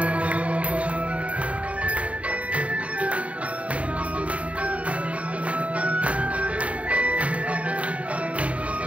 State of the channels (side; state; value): left; late; 0.065 ms